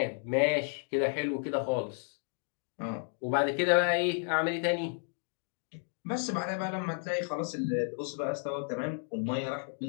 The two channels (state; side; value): silent; right; 56 dB below the other